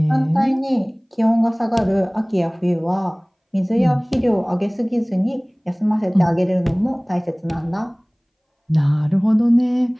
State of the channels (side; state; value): both; identical; correlation 1.00